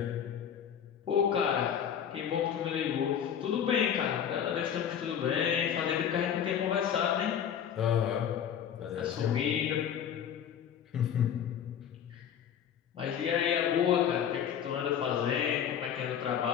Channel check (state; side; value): quieter; right; 8.8 dB